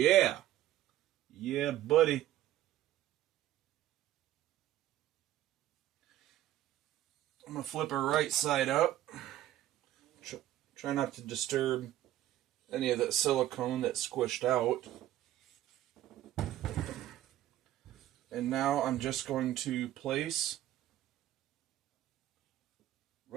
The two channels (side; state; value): left; quieter; 13.4 dB